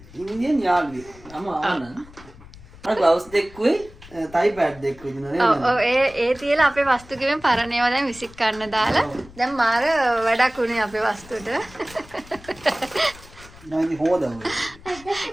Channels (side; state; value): left; noise; rumble, 21 dB below the sound